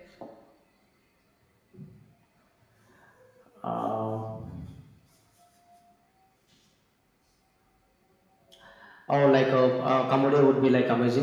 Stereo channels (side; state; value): both; identical; correlation 1.00